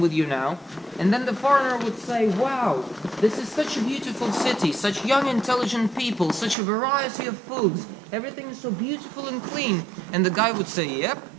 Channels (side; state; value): left; drops out; at 6.6 s